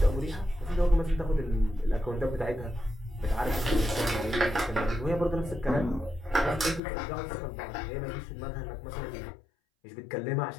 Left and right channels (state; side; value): drops out; right; at 6.8 s